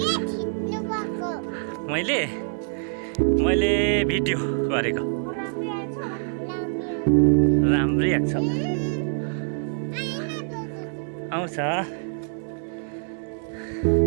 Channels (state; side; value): silent; left; 62 dB below the other